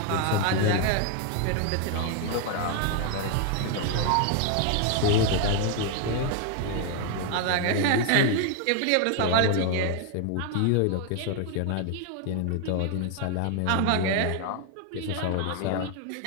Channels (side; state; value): both; different; correlation 0.01